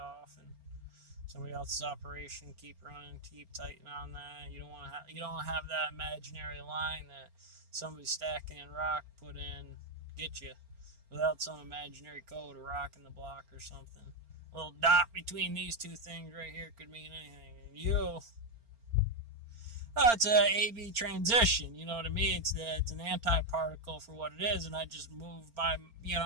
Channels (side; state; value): left; late; 4.4 ms